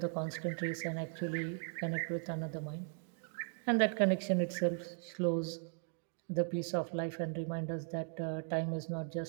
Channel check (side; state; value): left; silent; 53 dB below the other